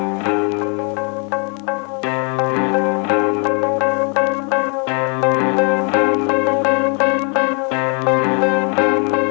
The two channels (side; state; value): right; quieter; 37.0 dB